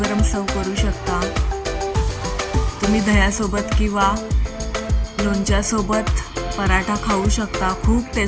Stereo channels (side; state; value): both; identical; correlation 1.00